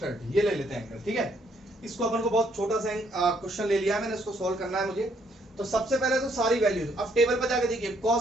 ये ले लेते हैं एंगल, ठीक है। इसको अपन को बहुत छोटा सा क्वेश्चन ले लिया मैंने, इसको सॉल्व करना है मुझे। तो सबसे पहले तो सारी वैल्यूज अब टेबल पर जाके देखिए।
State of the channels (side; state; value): both; normal; correlation 0.69